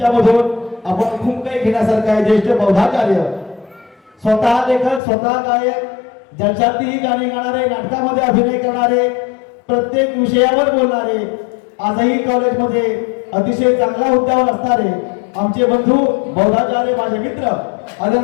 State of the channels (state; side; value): drops out; right; at 5.0 s